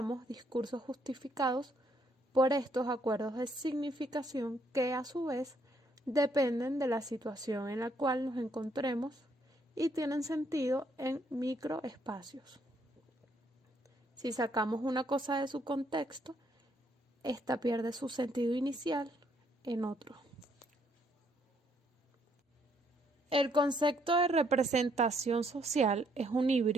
discursos justificados por estos acuerdos de significación que, a su vez, dependen de la situación en la cual nos encontremos y tienen sentido en microespacios. Si sacamos una cosa de su contexto, esta pierde su sentido inicial en otro. El concepto de representación social es un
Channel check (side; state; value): both; normal; correlation 0.70